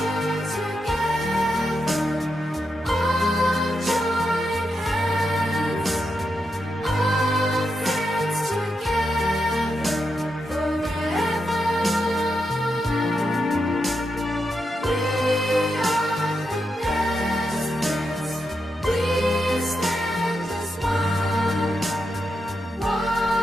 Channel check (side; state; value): both; normal; correlation 0.85